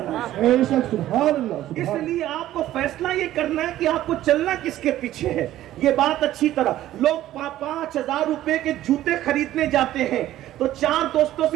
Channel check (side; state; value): left; quieter; 13.8 dB